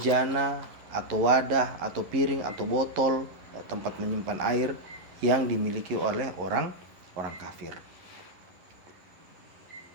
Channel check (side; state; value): left; late; 11 ms